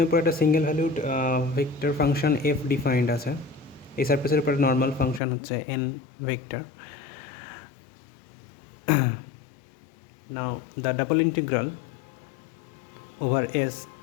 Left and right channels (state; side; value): drops out; right; at 5.2 s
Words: উপর একটা single valued vector function F defined আছে। এই সারফেসের উপর নর্মাল ফাংশন হচ্ছে N vector. Now the double integral over s